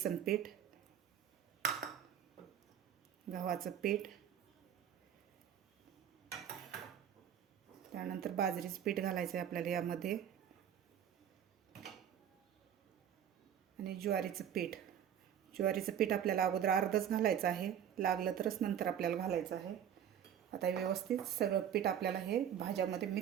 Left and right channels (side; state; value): left; quieter; 9.4 dB